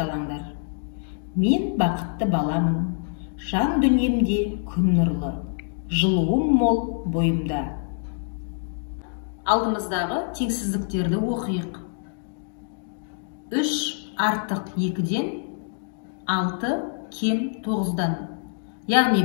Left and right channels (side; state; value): right; silent; digital silence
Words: Мен бақытты баламын, жан дүниемде күн нұрлы, жылуым мол бойымда. Алдымыздағы теңсіздіктерді оқиық. 3 артық 2-ден 6 кем 9-дан. Яғни